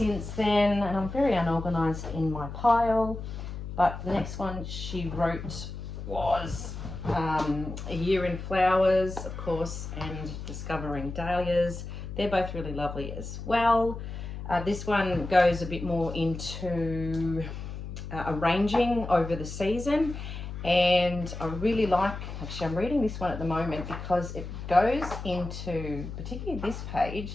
then, and I'm very unorganized in my pile, but the next one she wrote was A Year in Flowers, of course, and Discovering Dahlias. They're both really lovely as well. This one goes a bit more into arranging over the season, and I really like, actually I'm reading this one at the moment because it goes into, particularly this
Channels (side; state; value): left; noise; hum, 8 dB below the sound